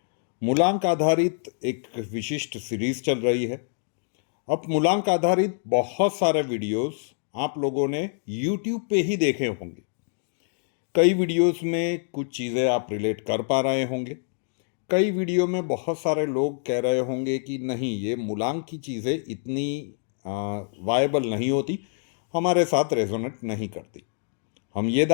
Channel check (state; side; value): silent; right; digital silence